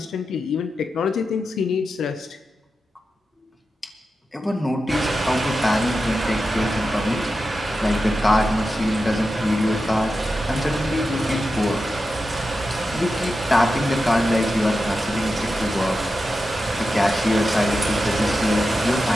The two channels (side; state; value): both; normal; correlation 0.90